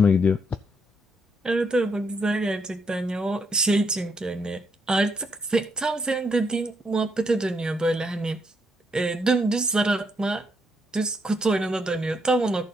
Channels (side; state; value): both; normal; correlation 0.76